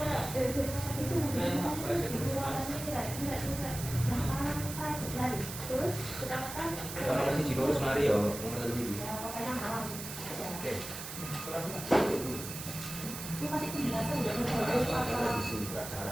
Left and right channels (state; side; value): noise; right; hiss, 9 dB below the sound